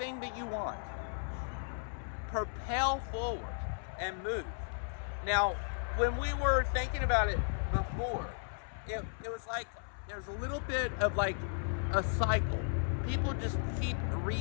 that you want, propel forward, and move. Now, when we were thinking about it before, it was like there's a little bit of like a cycle. People just keep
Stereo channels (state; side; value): silent; right; 54 dB below the other